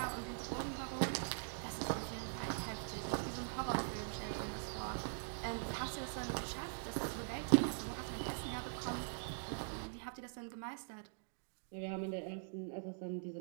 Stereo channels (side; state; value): left; silent; digital silence